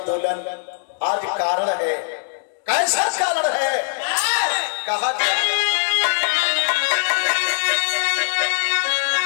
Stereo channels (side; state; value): right; silent; digital silence